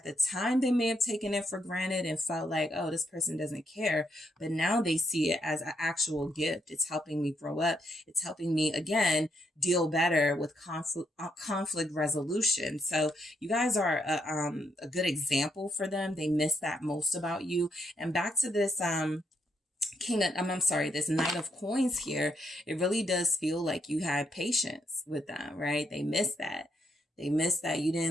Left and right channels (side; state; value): both; normal; correlation 0.77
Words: the time, they may have taken it for granted and felt like, oh, this person doesn't care. But now they see it as an actual gift. It's helping me grow up. It's helping me, again, deal better with conflict resolution. So you guys are a good example for them. They miss that most about you. And back to this, this Knight of Coins here, it really does feel like you had patience with them, right? They miss that. They miss that you